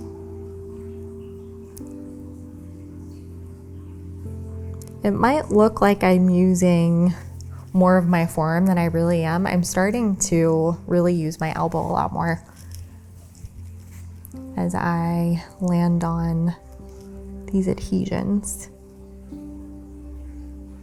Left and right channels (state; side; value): identical; both; correlation 1.00